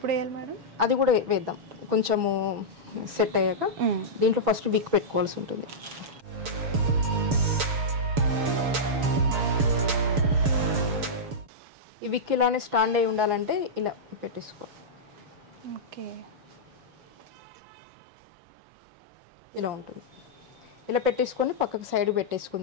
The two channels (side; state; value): left; late; 6.9 ms